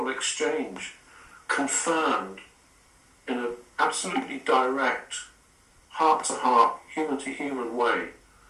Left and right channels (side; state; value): both; identical; correlation 1.00